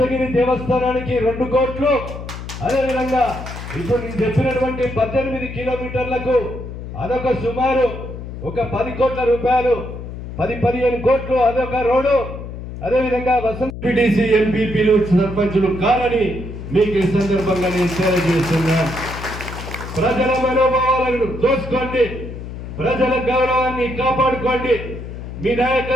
దేవస్థానానికి 2 కోట్లు, అదేవిధంగా ఇప్పుడు నేను చెప్పినటువంటి 18 కిలోమీటర్లకు అదొక సుమారు ఒక 10 కోట్ల రూపాయలు, 10-15 కోట్లు అదొక రోడ్డు. అదేవిధంగా వసంత పిటిసి ఎంపీపీలు సర్పంచులు కాదని మీకు ఈ సందర్భంగా నేను తెలియజేస్తున్నా. ప్రజల మనోభావాలను దోచుకోండి, ప్రజల గౌరవాన్ని కాపాడుకోండి, మీ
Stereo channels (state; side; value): noise; left; hum, 10 dB below the sound